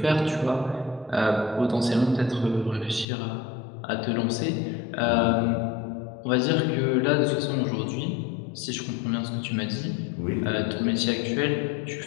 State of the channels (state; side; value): drops out; right; at 3.1 s